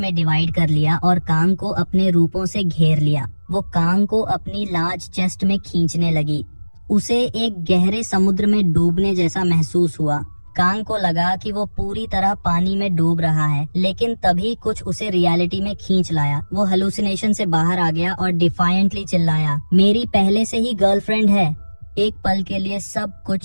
डिवाइड कर लिया और कांग को अपने रूपों से घेर लिया। वो कांग को अपनी लार्ज चेस्ट में खींचने लगी। उसे एक गहरे समुद्र में डूबने जैसा महसूस हुआ। कांग को लगा कि वो पूरी तरह पानी में डूब रहा है, लेकिन तभी कुछ उसे रियलिटी में खींच लाया। वो हेलुसिनेशन से बाहर आ गया और डिफायंटली चिल्लाया, मेरी पहले से ही गर्लफ्रेंड है। एक पल के लिए सब कुछ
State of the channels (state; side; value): inverted; both; correlation -1.00